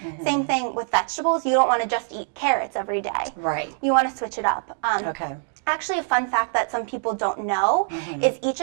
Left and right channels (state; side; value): silent; left; 56 dB below the other